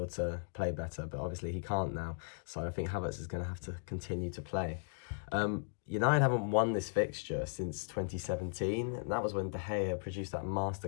to play better, but obviously he can't now. So I think Havertz is going to have to continue to play. United haven't won this fixture since 2017, and that was when De Gea produced that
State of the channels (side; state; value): right; silent; digital silence